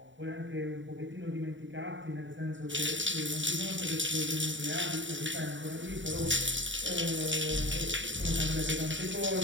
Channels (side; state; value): left; late; 0.55 ms